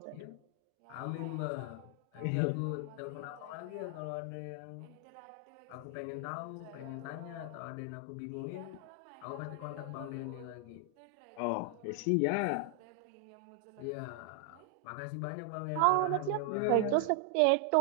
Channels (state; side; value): different; both; correlation 0.00